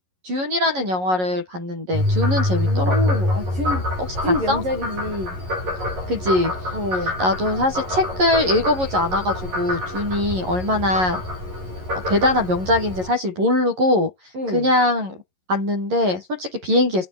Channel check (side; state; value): left; late; 11 ms